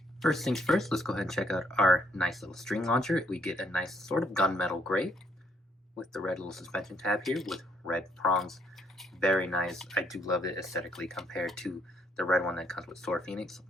First things first, let's go ahead and check out our nice little string launcher. We get a nice sort of gunmetal gray with the red little suspension tab here with red prongs. Very nice. I do love it aesthetically compared to the red one that comes with Sword Phoenix.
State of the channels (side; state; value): both; normal; correlation 0.69